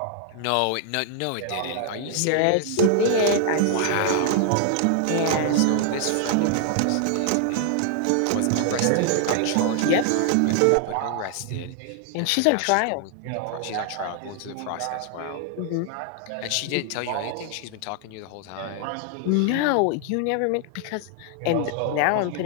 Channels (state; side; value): different; both; correlation 0.00